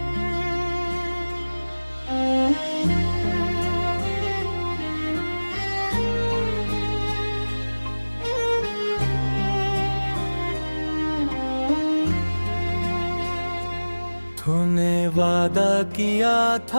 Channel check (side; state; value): both; inverted; correlation -1.00